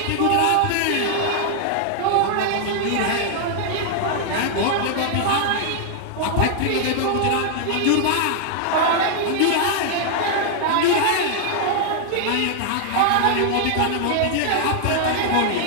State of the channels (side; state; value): both; different; correlation -0.01